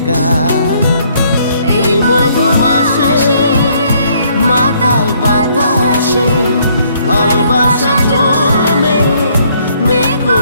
গা। এই মধুমাসে মাতাল বাতাসে ভালোবাসা জমে মেঘ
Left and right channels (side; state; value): both; inverted; correlation -0.66